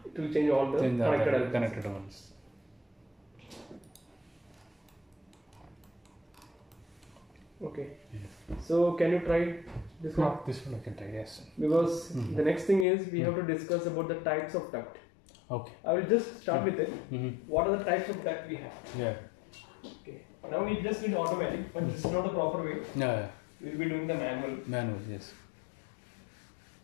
it will change all the connected ones. Okay. Yeah. So can you try this one? This one I can try, yes. Because the next thing is we have to discuss about the types of duct. Okay. I will just start with it. What are the types of duct we have? Yeah. Okay. Now we just need automatic, but this is not the proper way. Yeah. We will be doing the manual. Manual, yes.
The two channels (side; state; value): right; drops out; at 12.9 s